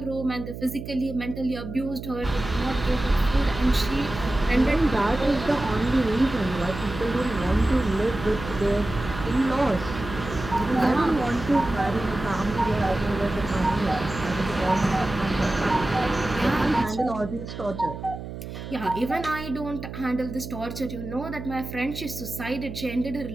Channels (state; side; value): noise; right; hum, 10 dB below the sound